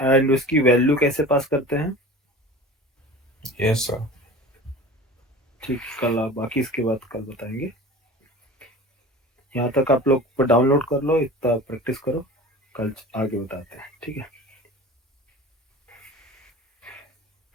एंड उसकी वैल्यू कैसे पास करते हैं। Yes sir. ठीक, कल आप बाकी इसके बाद कल बताएंगे। यहाँ तक आप लोग डाउनलोड कर लो, इतना प्रैक्टिस करो, कल आगे बताते हैं, ठीक है।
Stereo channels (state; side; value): normal; both; correlation 0.38